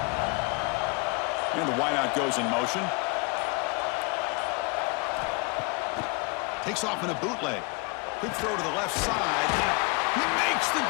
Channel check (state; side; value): quieter; right; 30.0 dB